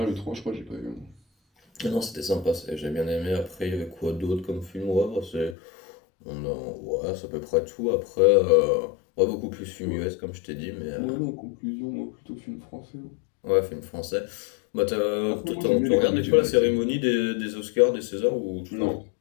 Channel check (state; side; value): drops out; right; at 5.6 s